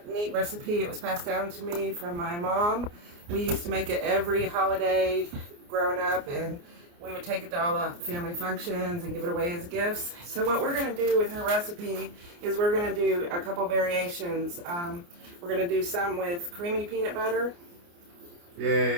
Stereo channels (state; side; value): late; left; 29 ms